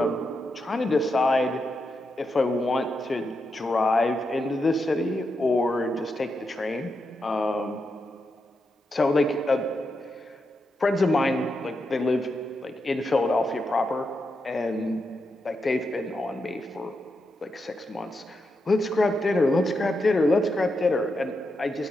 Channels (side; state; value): both; normal; correlation 0.85